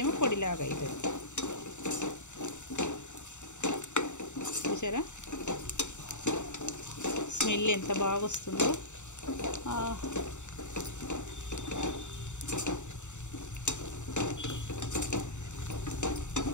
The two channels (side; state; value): right; late; 0.84 ms